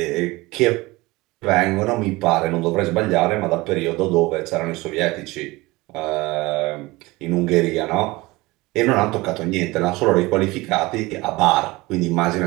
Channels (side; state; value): left; quieter; 21.4 dB